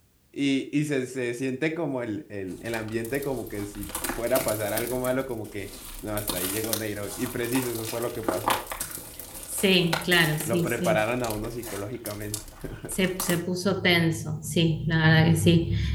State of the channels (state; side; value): identical; both; correlation 1.00